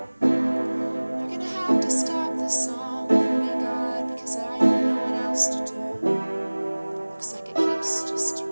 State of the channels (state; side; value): inverted; both; correlation -1.00